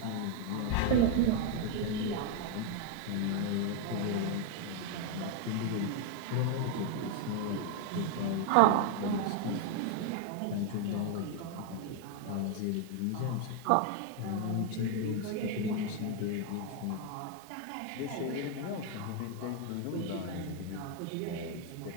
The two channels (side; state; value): both; different; correlation 0.01